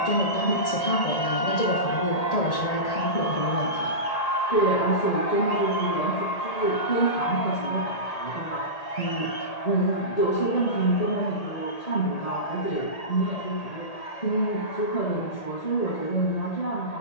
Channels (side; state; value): right; late; 1.8 ms